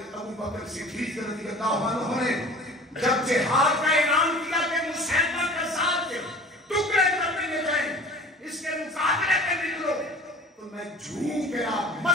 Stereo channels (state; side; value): normal; both; correlation 0.44